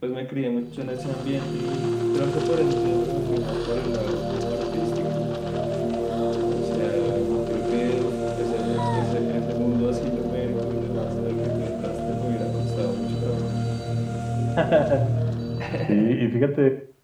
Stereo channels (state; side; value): identical; both; correlation 1.00